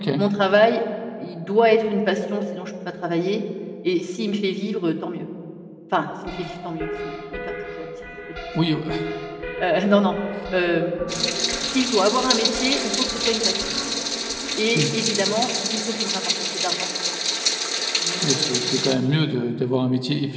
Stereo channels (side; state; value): both; identical; correlation 1.00